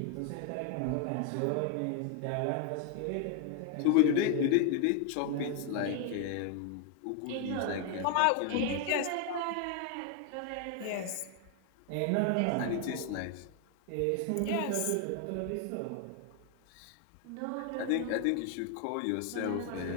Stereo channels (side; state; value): both; different; correlation 0.01